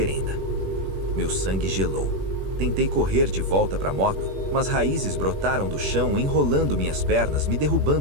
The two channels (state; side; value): late; left; 21 ms